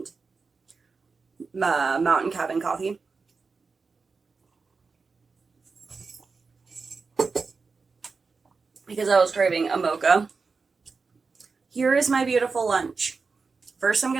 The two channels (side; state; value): left; quieter; 4.6 dB